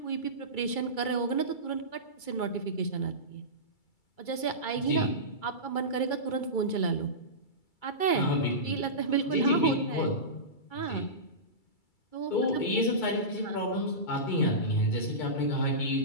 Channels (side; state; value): right; late; 2.3 ms